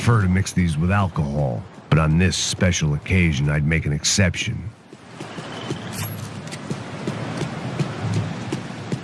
to mix these with alcohol, but on this special occasion I'd make an exception.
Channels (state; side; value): identical; both; correlation 1.00